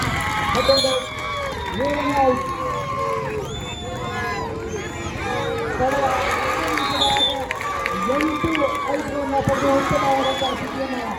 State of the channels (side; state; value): both; identical; correlation 1.00